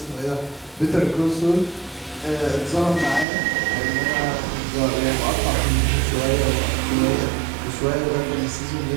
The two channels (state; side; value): drops out; left; at 3.2 s